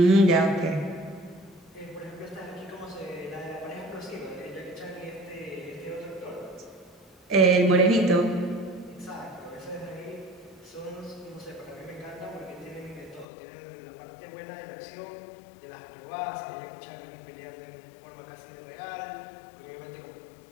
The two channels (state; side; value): drops out; right; at 13.2 s